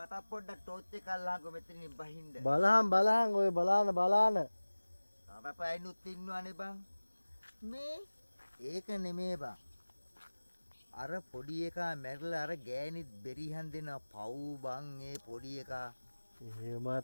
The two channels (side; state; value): both; inverted; correlation -1.00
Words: පොඩ්ඩක් ටෝච් එක අල්ලංකො මෙතනින් බහින්න. බලහන් ඔය බලාන. තරපයිනුත් ඉන්නවනේ බං. මේ ඒක නෙමේ බං. අර පොඩි එකා මැරිලා අර ගෑනිත් බෙරිහන් දෙන පව් බං ඒ පොඩි එකා. එහෙම